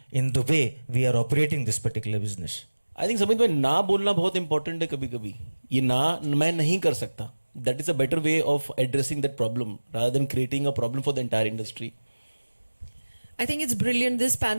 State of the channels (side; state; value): both; inverted; correlation -1.00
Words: in the way we are operating this particular business. I think Samit भाई ना बोलना बहुत important है कभी कभी ये ना मैं नहीं कर सकता that is a better way of addressing that problem rather than creating a problem for the entire industry I think it's brilliant. This